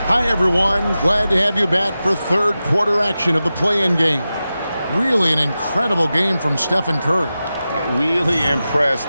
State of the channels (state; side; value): inverted; both; correlation -0.93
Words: Hi, everyone. Glad to have you back for third quarter action of the play-in game. Really an incredible game from Stephen Curry. Really